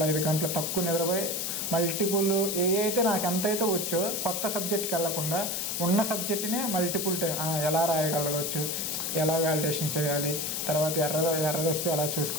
5 గంటలు తక్కువ నిద్రపోయి మల్టిపుల్ అయితే నాకు ఎంతైతే వచ్చో కొత్త సబ్జెక్ట్కి వెళ్ళకుండా ఉన్న సబ్జెక్ట్నే మల్టిపుల్ టైం ఎలా రాయగలగవచ్చు, ఎలా వ్యాలిడేషన్ చేయాలి, తర్వాత ఎర్రర్ వస్తే ఎలా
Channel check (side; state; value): left; noise; hiss, 2 dB below the sound